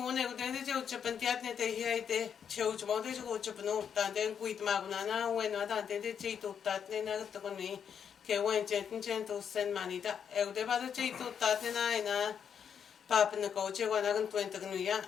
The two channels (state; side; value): quieter; right; 7.7 dB